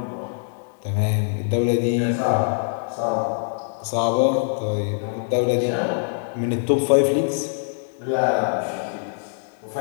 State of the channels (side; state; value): right; silent; digital silence